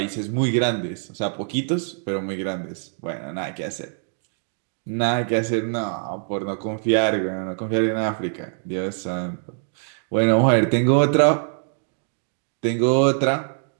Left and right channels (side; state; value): left; silent; 63 dB below the other